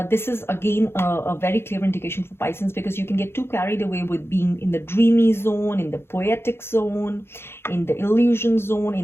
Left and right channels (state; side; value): late; right; 0.12 ms